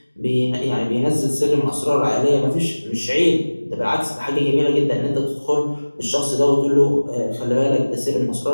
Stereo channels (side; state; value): both; inverted; correlation -1.00